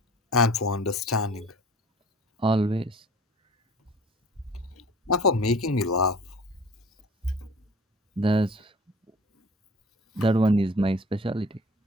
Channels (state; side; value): normal; both; correlation 0.46